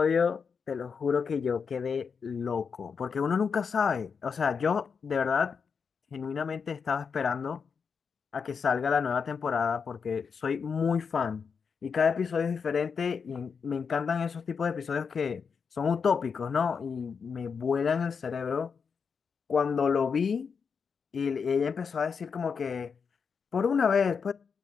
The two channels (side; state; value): right; quieter; 6.0 dB